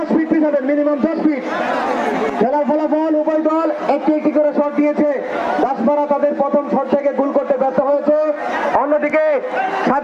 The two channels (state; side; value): identical; both; correlation 1.00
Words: fit পিছাবেন, minimum 10 fit. খেলার ফলাফল উভয় দল একটি একটি করে শট দিয়েছে। দাসপাড়া তাদের প্রথম শট থেকে গোল করতে ব্যর্থ হয়েছে। অন্যদিকে